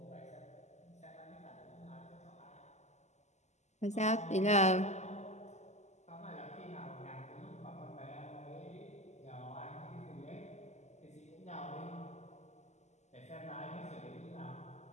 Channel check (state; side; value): late; right; 0.33 ms